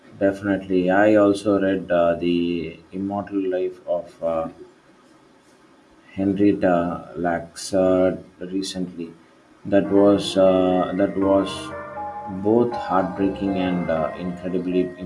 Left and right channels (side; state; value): both; identical; correlation 1.00